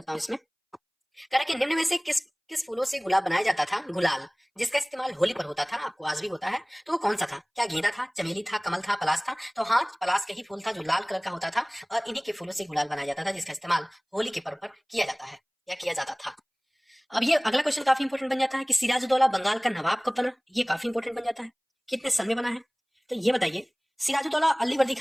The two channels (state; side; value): identical; both; correlation 1.00